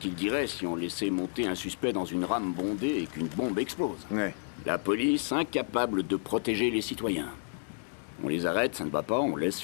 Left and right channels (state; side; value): silent; right; 57 dB below the other